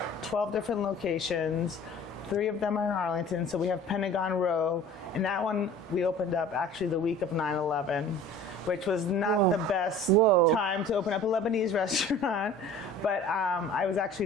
12 different locations. 3 of them are in Arlington. So we have Pentagon Row. And that one we opened up actually the week of 9/11, which was not the best time to open up a Lebanese restaurant. But I was actually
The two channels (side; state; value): both; normal; correlation 0.44